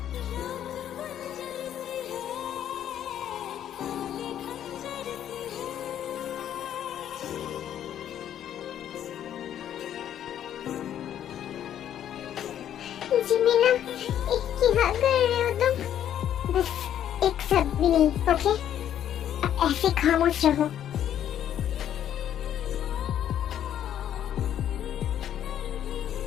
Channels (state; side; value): quieter; right; 10.5 dB